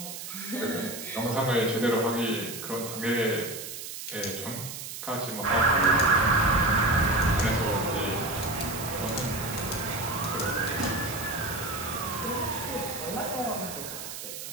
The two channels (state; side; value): noise; right; hiss, 9 dB below the sound